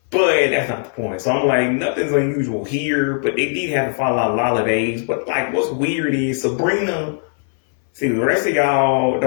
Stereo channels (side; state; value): right; silent; 62 dB below the other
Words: But that's not the point. So I'm like, nothing's unusual here, but they did have to follow out holidays. But like, what's weird is Sabrina. See, the rest of y'all